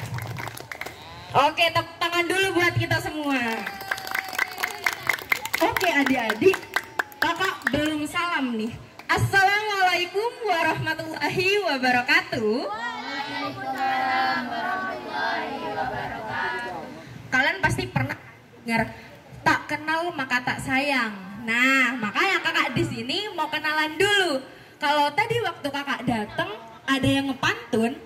Oke, tepuk tangan dulu buat kita semua. Oke adik-adik, kakak belum salam nih. Assalamualaikum warahmatullahi wabarakatuh. Waalaikumsalam warahmatullahi wabarakatuh. Kalian pasti pernah dengar tak kenal maka tak sayang. Nah, makanya kakak di sini mau kenalan dulu. Kalau tadi waktu kakak datang ada yang ngepantun,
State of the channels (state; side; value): identical; both; correlation 1.00